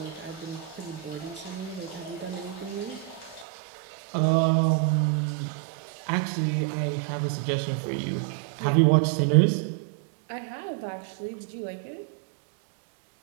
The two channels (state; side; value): drops out; left; at 3.5 s